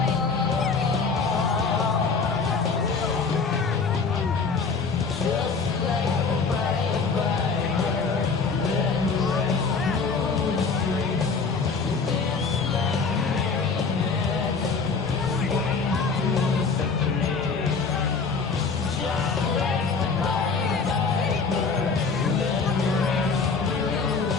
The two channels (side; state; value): right; quieter; 4.8 dB